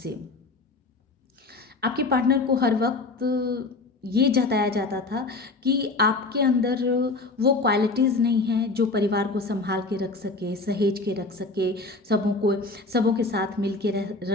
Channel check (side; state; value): right; quieter; 3.4 dB